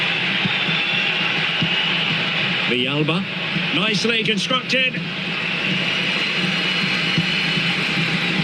Villalba, nicely constructed.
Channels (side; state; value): both; identical; correlation 1.00